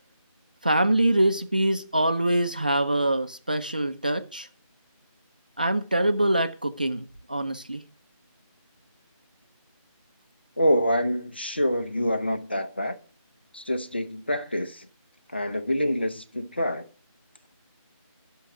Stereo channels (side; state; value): both; inverted; correlation -0.86